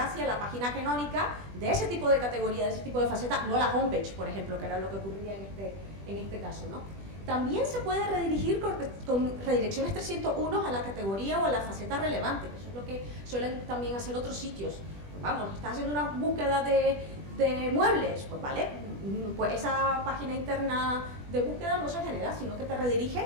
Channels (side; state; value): left; late; 20 ms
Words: la página canónica de ese tipo de categoría, de ese tipo de faceta, no la homepage, por ejemplo, que era lo que ocurría en este caso, ¿no? También se puede redirigir con redirecciones 301 a la categoría o a la faceta relevante, que eso es lo que suelen también hacer otros sitios. Vamos, estás haciendo una búsqueda de muebles, pues vale, pues esa página interna de búsqueda no se genera, sino que te redirige